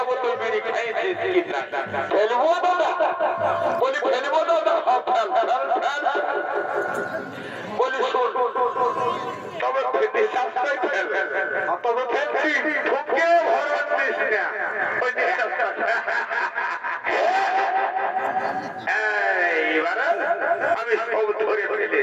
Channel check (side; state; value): both; identical; correlation 1.00